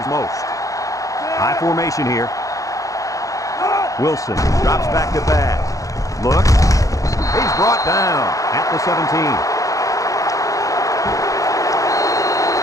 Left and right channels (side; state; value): right; late; 0.16 ms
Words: most. High formation here. Wilson drops back to pass. Look. He's brought down at the 17.